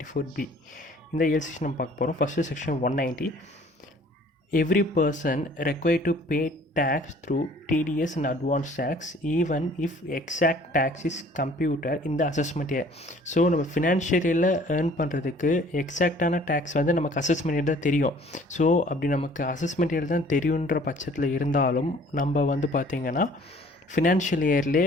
இந்த 7 செக்ஷன் நம்ம பார்க்க போகிறோம். First section 190. Every person required to pay tax through TDS and advance tax even if exact tax is computed in the assessment year. So நம்ம ஃபினான்ஷியலில் earn பண்ணுறதுக்கு எக்ஸாக்டான tax வந்து நமக்கு assessment year தான் தெரியும். ஸோ அப்படி நமக்கு அசஸ்மெண்ட் இயர் தான் தெரியுன்ற பட்சத்தில் இருந்தாலும் நம்ம வந்து பார்த்திங்கன்னா ஃபினான்ஷியல் இயர்லேயே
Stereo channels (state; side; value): normal; both; correlation 0.54